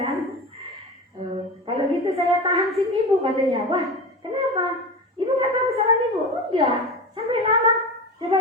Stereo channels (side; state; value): both; normal; correlation 0.27